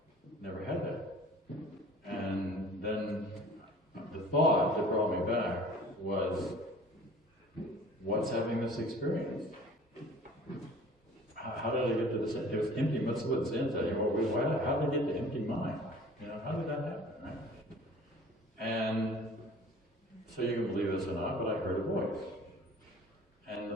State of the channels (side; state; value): both; normal; correlation 0.48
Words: Never had that. And then the thought that brought me back was, what's having this experience? How did I get to this? It was empty. What's the sense? How did I get to empty mind? How did that happen? Right? And so you can believe this or not, but I heard a voice.